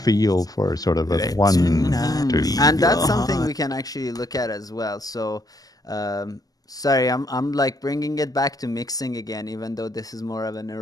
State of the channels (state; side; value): late; right; 0.18 ms